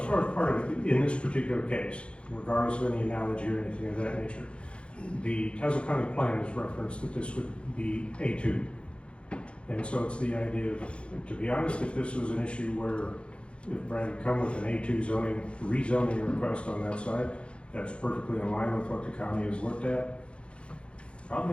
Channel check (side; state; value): right; late; 0.058 ms